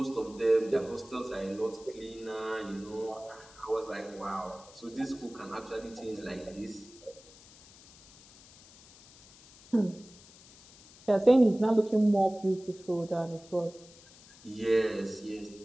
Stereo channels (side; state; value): left; noise; hiss, 23 dB below the sound